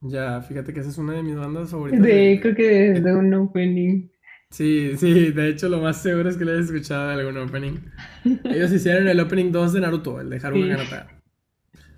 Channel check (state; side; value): identical; both; correlation 1.00